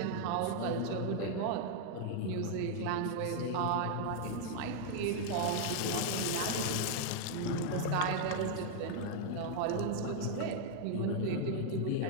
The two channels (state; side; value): different; both; correlation 0.00